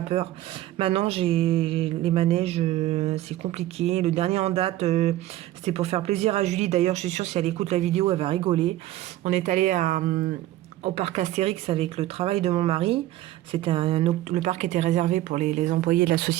peur. Maintenant, j'ai les manèges, c'est compliqué. Le dernier en date, c'était pour faire plaisir à Julie. D'ailleurs, je suis sûre si elle écoute la vidéo, elle va rigoler. On est allé au parc Astérix avec le travail de mon mari. Le parc était réservé pour les employés de la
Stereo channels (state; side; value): quieter; left; 14.9 dB